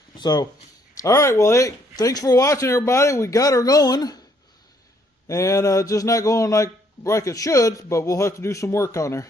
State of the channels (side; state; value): both; normal; correlation 0.67